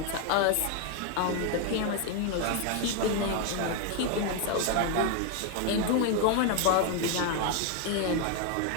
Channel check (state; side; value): different; both; correlation 0.01